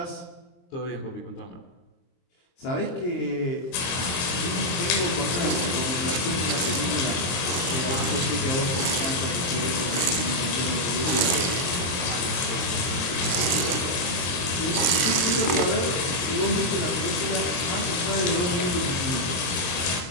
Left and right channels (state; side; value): late; right; 23 ms